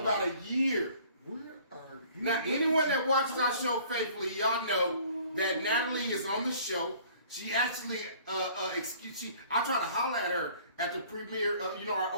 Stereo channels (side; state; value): both; inverted; correlation -0.53